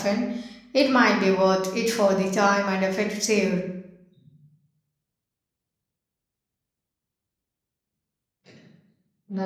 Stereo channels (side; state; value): both; identical; correlation 1.00